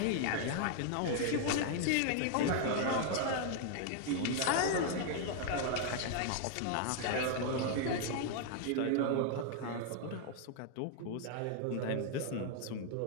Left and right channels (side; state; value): both; different; correlation 0.00